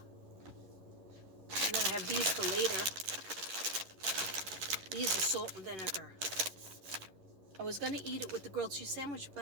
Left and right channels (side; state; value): left; late; 11 ms